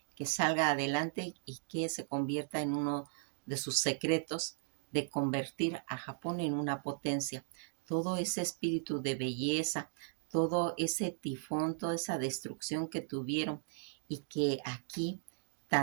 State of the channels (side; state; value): left; silent; digital silence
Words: que salga adelante y que se convierta en uno de sus secretos de convertir a Japón en una potencia. Todo ese espíritu de belleza, todo ese tifón, toda esa destrucción que tuvieron y que aquí